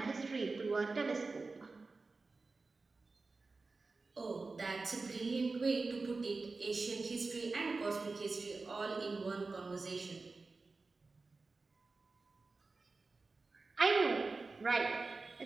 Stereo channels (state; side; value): quieter; left; 3.8 dB